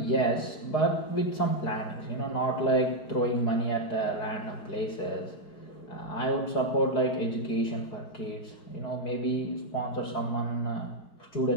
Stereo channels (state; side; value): late; right; 4.8 ms